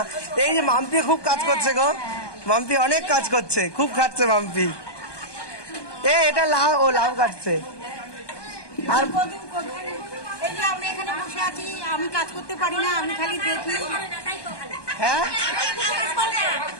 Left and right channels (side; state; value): right; late; 1.2 ms